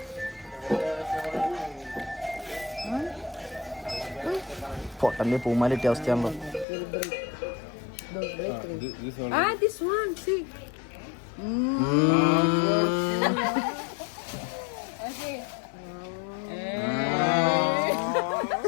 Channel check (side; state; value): right; drops out; at 6.7 s